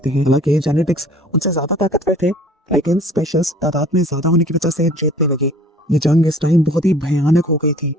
हैं। हालांकि जेनेटिक्स उनसे ज्यादा ताकतवर थे लेकिन स्पेशल्स तादाद में ज्यादा होने की वजह से जीतने लगे। ये जंग इस टाइम बहुत ही भयानक हो गई थी।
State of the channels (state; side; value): normal; both; correlation 0.51